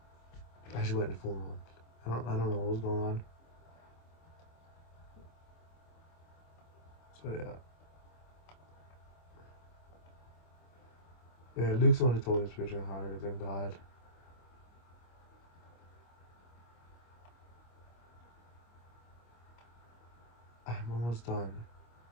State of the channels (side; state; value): right; late; 25 ms